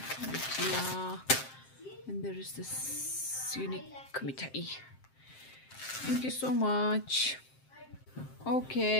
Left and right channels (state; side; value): late; right; 7.6 ms